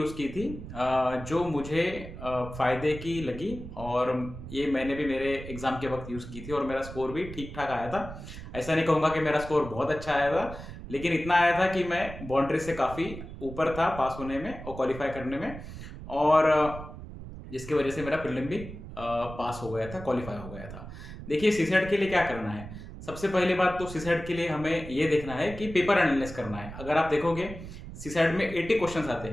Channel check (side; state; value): right; noise; rumble, 12 dB below the sound